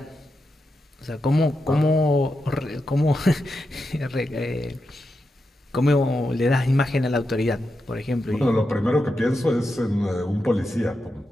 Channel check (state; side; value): normal; both; correlation 0.87